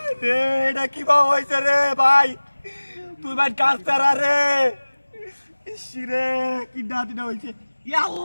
রে এটা কি বা হয়েছে রে ভাই তুই ভাই কাজ তারা রে রে কি ডাহাতিটা হয়েছে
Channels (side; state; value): both; inverted; correlation -1.00